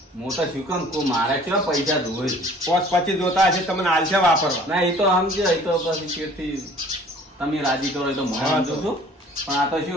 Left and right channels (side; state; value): both; normal; correlation 0.51